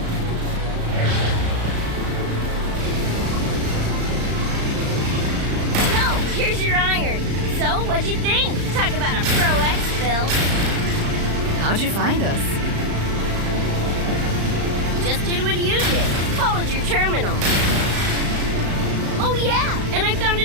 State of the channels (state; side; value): late; left; 35 ms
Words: What'd you think? Talk about a pro exfil. How'd you find us? Just did what you did. Followed your terminal. Oh yeah, and I found